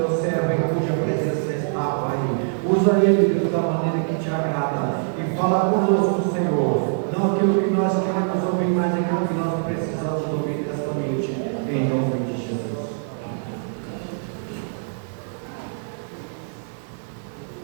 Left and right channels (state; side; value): silent; left; digital silence